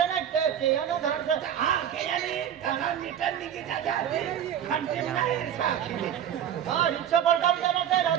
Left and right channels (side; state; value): left; quieter; 9.7 dB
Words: खानते नाही साखी हा रिक्षा पलटा जाना ते